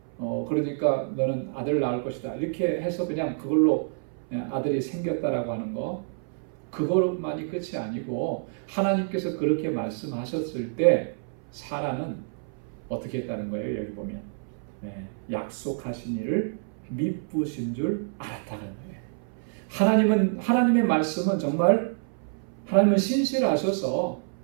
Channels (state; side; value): silent; left; 60 dB below the other